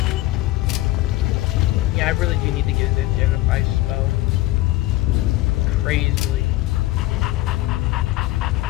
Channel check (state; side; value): quieter; right; 17.4 dB